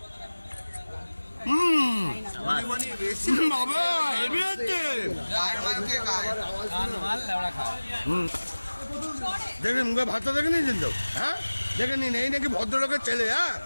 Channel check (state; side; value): inverted; both; correlation -1.00